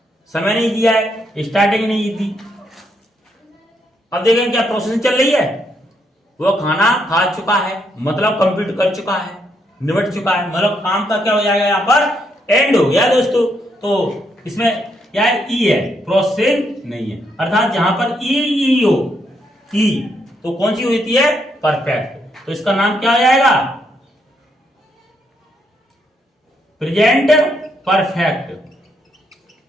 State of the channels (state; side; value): normal; both; correlation 0.76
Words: समय नहीं दिया है, स्टार्टिंग नहीं दी। अब देखेंगे क्या प्रोसेसिंग चल रही है, वह खाना खा चुका है, मतलब कंप्लीट कर चुका है, निपट चुका है, मतलब काम का क्या हो जाएगा, यहां पर एंड हो गया दोस्तों। तो इसमें क्या है, ई है, प्रोसेसिंग नहीं है, अर्थात जहां पर ई हो, ई तो कौन सी होती है, परफेक्ट, तो इसका नाम क्या हो जाएगा, present perfect,